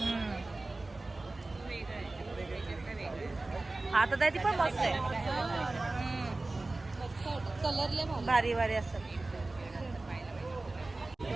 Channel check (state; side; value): quieter; left; 3.1 dB